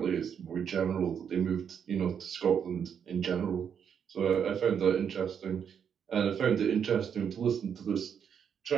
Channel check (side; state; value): left; quieter; 7.7 dB